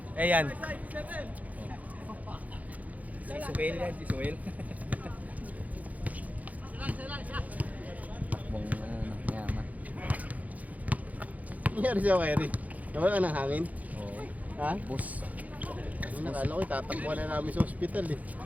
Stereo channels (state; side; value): late; left; 0.075 ms